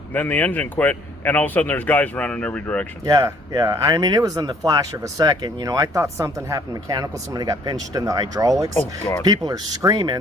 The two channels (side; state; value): both; normal; correlation 0.60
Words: then the engine quit, and all of a sudden there's guys running in every direction. Yeah. I mean, it was in the flash of a second. You know, I thought something happened mechanical. Somebody got pinched in the hydraulics. Oh, God. People are